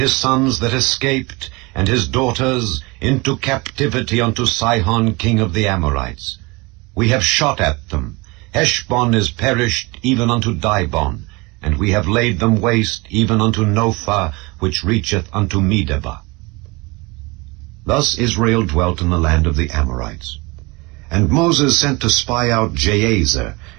sons that escaped, and his daughters, into captivity unto Sihon king of the Amorites. We have shot at them. Heshbon is perished even unto Dibon, and we have laid them waste even unto Nophah, which reacheth unto Medeba. Thus Israel dwelt in the land of the Amorites. And Moses sent to spy out Jahazer,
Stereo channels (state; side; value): quieter; left; 25.6 dB